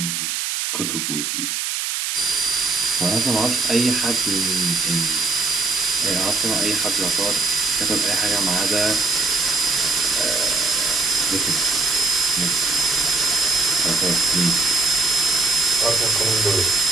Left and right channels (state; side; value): noise; right; hiss, 2 dB below the sound